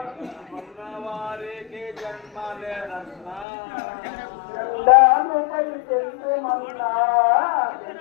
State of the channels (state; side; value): drops out; right; at 3.5 s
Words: వారికి జన్మలేదన్నా జెండానుపై చెందుమన్నా